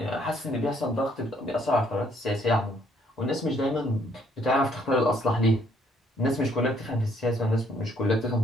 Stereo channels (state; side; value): normal; both; correlation 0.66